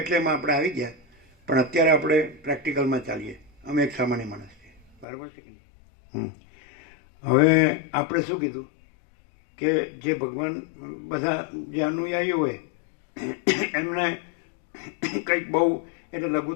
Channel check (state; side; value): drops out; right; at 5.1 s